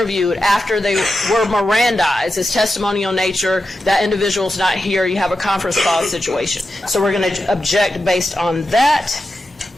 after they were Mirandized. It's testimonial nature. That individual's not here. You have a conference call situation. So we're going to object based on that.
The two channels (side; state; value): both; normal; correlation 0.90